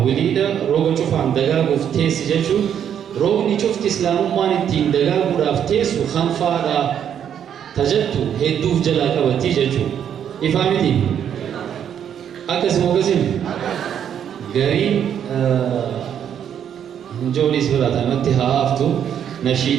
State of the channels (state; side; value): quieter; left; 9.0 dB